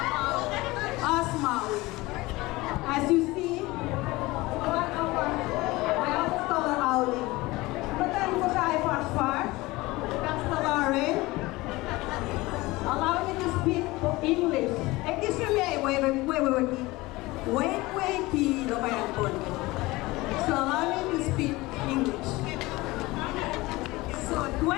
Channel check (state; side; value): quieter; right; 20.8 dB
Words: of Maui. As you see, one of our, I always call her Auli. Matan ko siya ay far, Lauren. Allow me to speak English. Excuse me, wait, so allow me to speak English. So